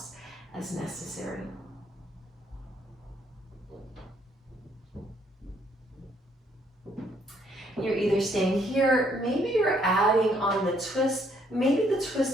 as necessary. You're either staying here, maybe you're adding on the twist. Maybe the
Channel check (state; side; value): normal; both; correlation 0.68